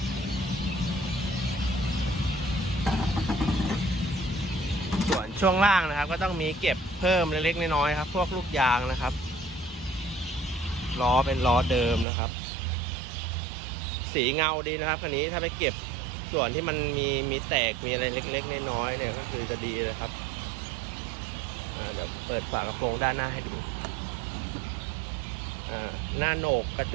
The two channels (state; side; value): drops out; left; at 12.1 s